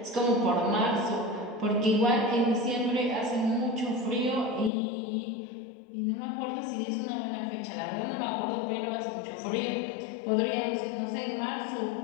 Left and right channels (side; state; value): right; drops out; at 4.7 s